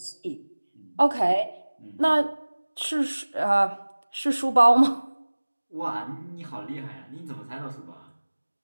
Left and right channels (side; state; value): both; inverted; correlation -1.00